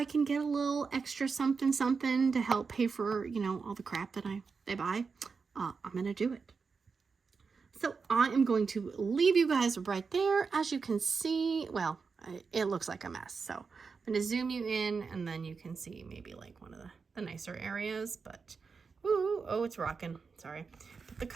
can get a little extra something to help pay for, you know, all the crap that they buy, I'm gonna do it. So I am going to leave you guys right there. As you can see, well, it looks like a mess, so I'm going to zoom you in, and then you can see maybe like one of the nicer areas, but ooh, oh, it's rocking, sorry. But the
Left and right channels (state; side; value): quieter; left; 5.1 dB